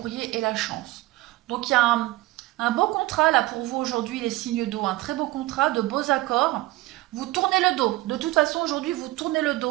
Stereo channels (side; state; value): left; quieter; 18.9 dB